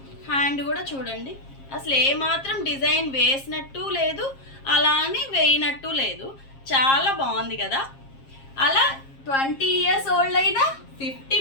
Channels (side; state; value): right; late; 7.4 ms